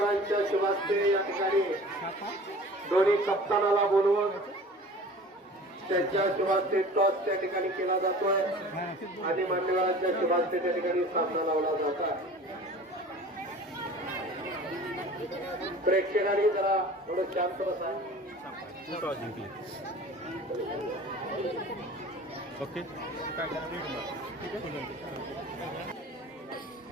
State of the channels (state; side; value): normal; both; correlation 0.42